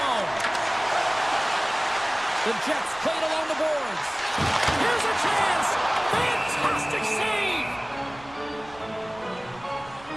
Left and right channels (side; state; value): right; noise; rumble, 22 dB below the sound